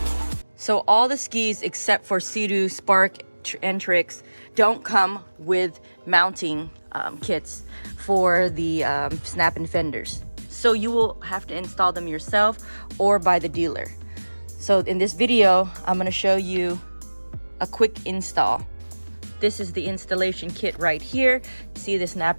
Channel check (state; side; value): inverted; both; correlation -1.00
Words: So all the skis except for Seadoo, Spark, and Trixx don't come with mounting kits for the Snap-In Fenders. So you will have to install them yourself or by the dealer. So in this video, I'm going to show you a quick install. This is the installation kit right here. See the